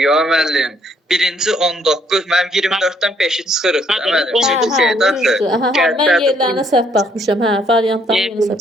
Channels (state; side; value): normal; both; correlation 0.67